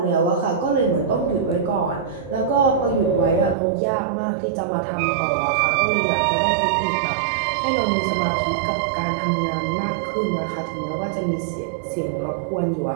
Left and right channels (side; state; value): left; drops out; at 3.6 s